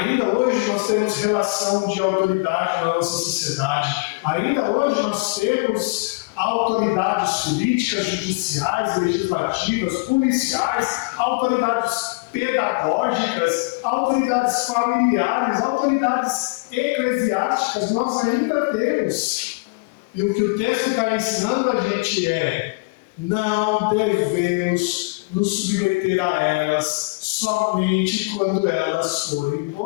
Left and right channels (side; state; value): right; quieter; 29.0 dB